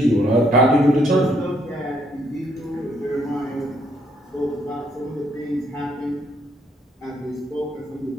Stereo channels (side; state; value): both; normal; correlation 0.70